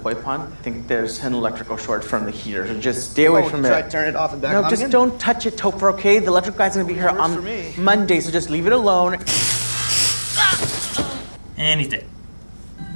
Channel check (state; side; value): inverted; both; correlation -1.00